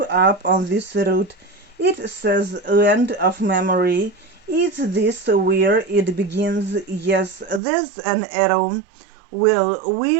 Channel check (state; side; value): drops out; left; at 7.6 s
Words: up on this root. It says land of memory. Is this where it begins? Yes, there's an arrow. Well,